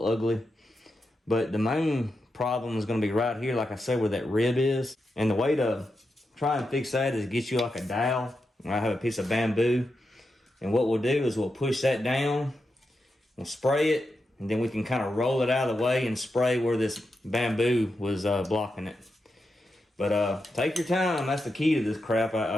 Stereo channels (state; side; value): normal; both; correlation 0.87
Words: ugly. But the main problem is gonna be right here, like I said, where that rib is. And the way to try and fix that is get you like a dowel. I have a piece of bamboo. And what we'll do is we'll push that down, we'll spray it, and then we can kind of roll it out of the way and spray where this bamboo was blocking it. But take your time, that's the key to this crap.